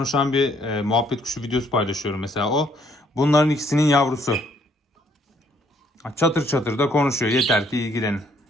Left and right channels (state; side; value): normal; both; correlation 0.66